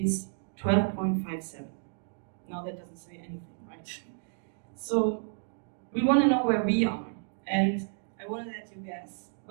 12.57. Now that doesn't say anything, right? So we want to know where we are, and I want to let you guess.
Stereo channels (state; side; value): silent; left; 57 dB below the other